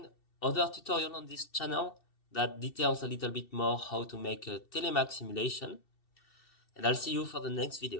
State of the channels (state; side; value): late; right; 2.7 ms